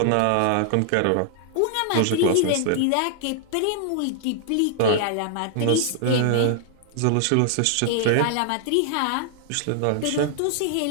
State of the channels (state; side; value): different; both; correlation -0.01